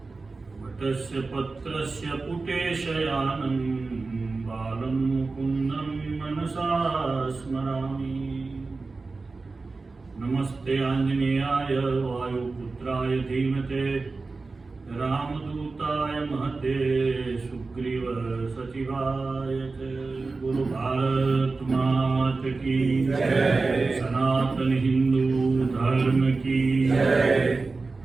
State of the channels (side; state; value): left; quieter; 3.8 dB